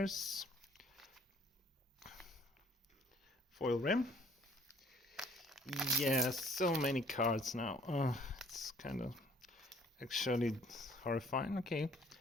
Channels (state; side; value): normal; both; correlation 0.58